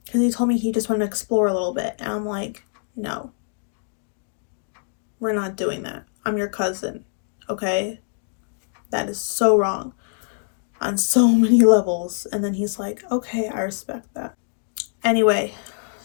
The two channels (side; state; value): right; silent; digital silence